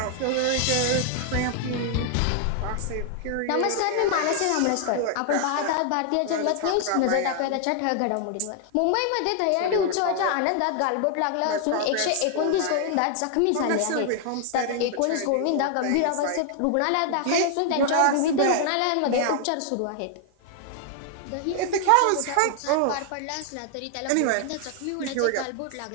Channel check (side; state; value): both; different; correlation 0.00